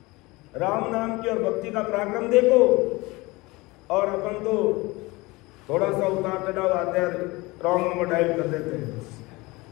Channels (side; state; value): right; quieter; 22.7 dB